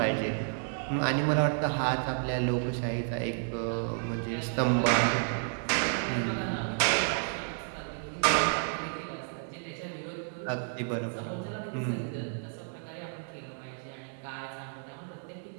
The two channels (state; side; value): silent; left; 57 dB below the other